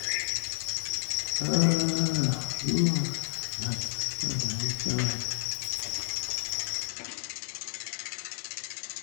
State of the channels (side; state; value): right; silent; 57 dB below the other